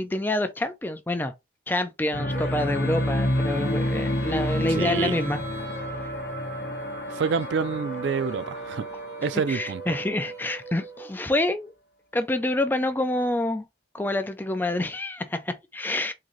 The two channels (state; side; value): normal; both; correlation 0.59